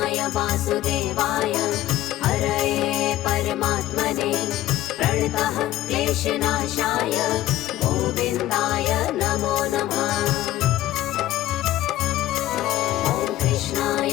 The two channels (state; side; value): quieter; right; 14.5 dB